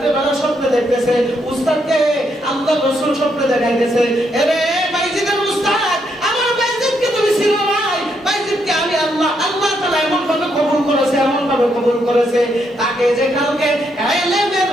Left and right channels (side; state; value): both; normal; correlation 0.77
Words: স্বপ্নে দেখতেছে উস্তাদকে আল্লাহর রাসূল স্বপ্নে দেখাইতেছে, এরে বাইজিদের উস্তাদ, আমার বাইজিদকে তুমি চিনো নাই? বাইজিদকে আমি আল্লাহ তাআলা এমন ভাবে কবুল করেছে, তাকে যে কালকে